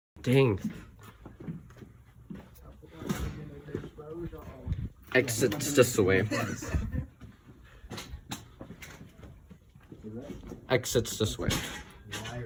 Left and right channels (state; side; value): identical; both; correlation 1.00